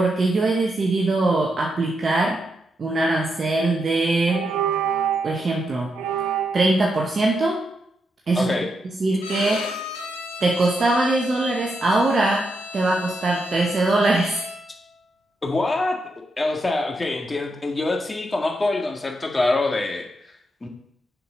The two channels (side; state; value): both; normal; correlation 0.83